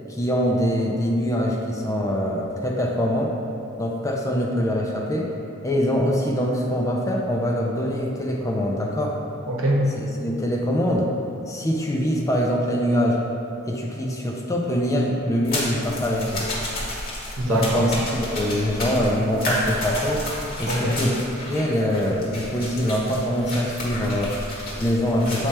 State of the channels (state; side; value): normal; both; correlation 0.61